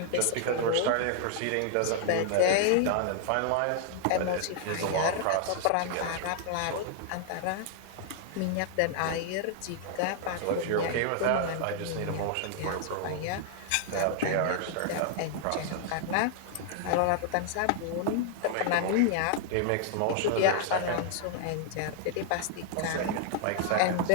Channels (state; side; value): different; both; correlation 0.00